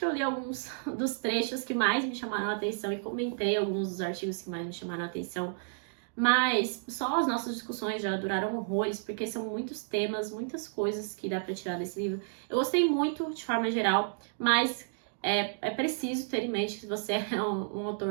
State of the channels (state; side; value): silent; left; digital silence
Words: eu li alguns dos trechos que mais me chamaram a atenção e comentei alguns dos artigos que mais me chamaram a atenção, mas só as nossas discussões já duraram horrores, porque são muitos temas, muitas coisas que dá pra tirar desse livro. Eu gostei muito, de forma geral, mas é preciso ter em mente que você é um